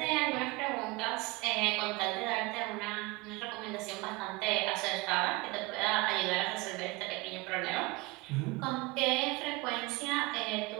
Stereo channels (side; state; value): left; quieter; 23.8 dB